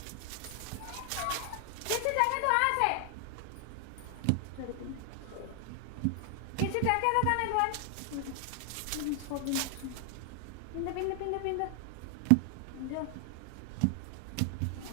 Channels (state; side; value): different; both; correlation 0.00